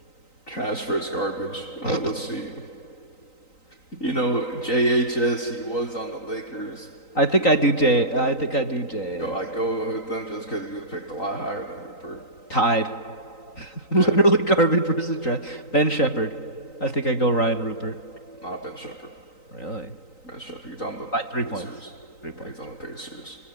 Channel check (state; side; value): late; right; 3.9 ms